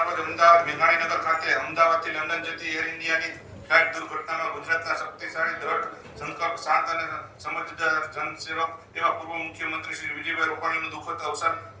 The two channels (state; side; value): identical; both; correlation 1.00